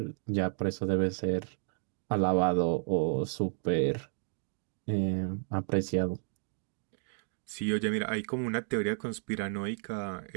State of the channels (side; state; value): left; silent; digital silence